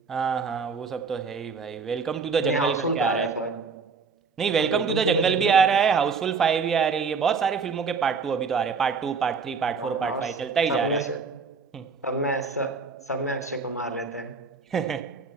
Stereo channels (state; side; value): quieter; left; 5.2 dB